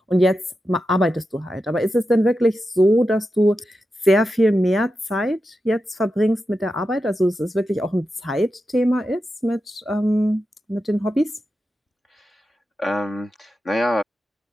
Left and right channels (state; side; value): normal; both; correlation 0.90